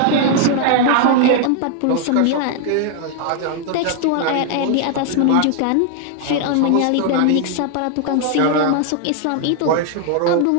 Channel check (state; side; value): different; both; correlation 0.00